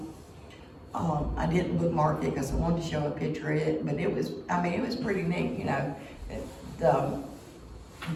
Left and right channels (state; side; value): identical; both; correlation 1.00